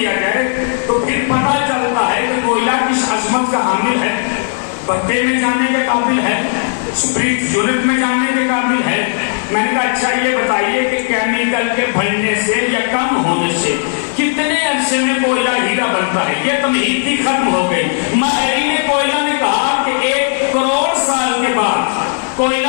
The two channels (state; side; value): silent; right; digital silence